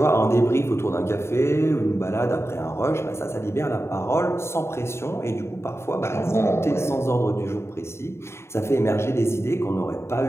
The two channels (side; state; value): right; late; 0.13 ms